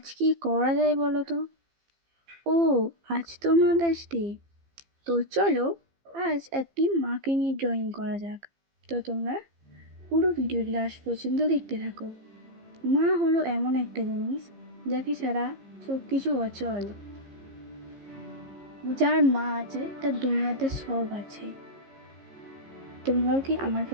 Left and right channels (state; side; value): late; left; 15 ms